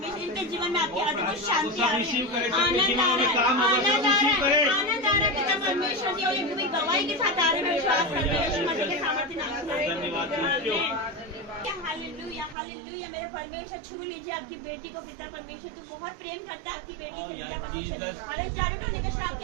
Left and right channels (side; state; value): left; drops out; at 12.6 s